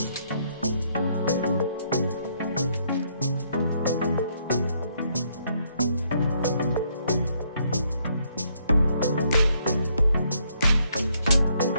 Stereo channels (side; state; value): both; inverted; correlation -0.71